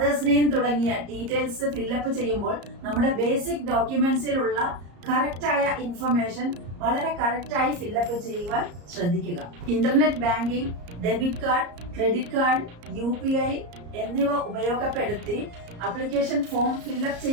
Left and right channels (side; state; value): left; late; 34 ms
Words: നെയിം തുടങ്ങിയ ഡീറ്റെയിൽസ് ഫില്ലപ്പ് ചെയ്യുമ്പോൾ നമ്മുടെ ബേസിക് ഡോക്യുമെന്റ്സിലുള്ള കറക്റ്റായ ഇൻഫർമേഷൻ വളരെ കറക്റ്റായി ഫില്ലപ്പ് ചെയ്യുവാൻ ശ്രദ്ധിക്കുക. Internet banking, debit card, credit card, UPI എന്നിവ ഉപയോഗപ്പെടുത്തി അപ്ലിക്കേഷൻ ഫോം ഫില്ലപ്പ്